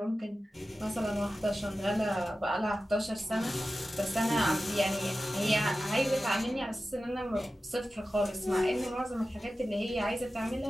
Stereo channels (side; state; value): both; normal; correlation 0.94